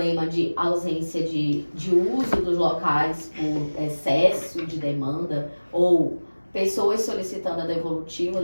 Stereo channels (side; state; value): both; inverted; correlation -1.00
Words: de ausência de uso dos locais por excesso de demanda ou pessoas solicitando a devolutiva